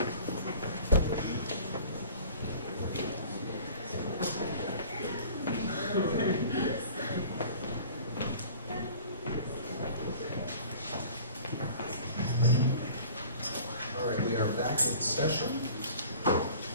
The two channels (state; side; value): inverted; both; correlation -0.46